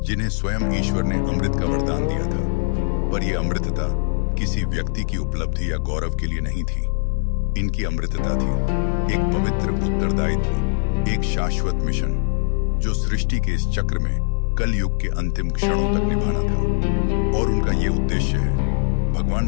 जिन्हें स्वयं ईश्वर ने अमृत का वरदान दिया था। पर यह अमृतता किसी व्यक्ति की उपलब्धि या गौरव के लिए नहीं थी। इनकी अमृतता थी एक पवित्र उत्तरदायित्व, एक शाश्वत मिशन जो सृष्टि के इस चक्र में कलयुग के अंतिम क्षणों तक निभाना था। और उनका ये उद्देश्य है भगवान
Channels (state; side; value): silent; right; digital silence